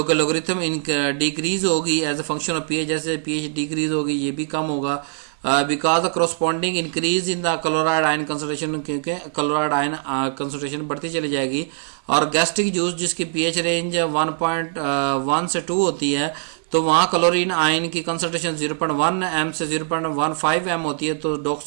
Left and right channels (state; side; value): silent; left; digital silence